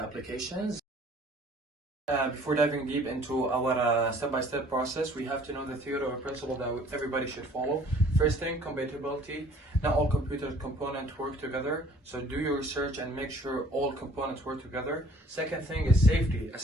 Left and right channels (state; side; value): normal; both; correlation 0.54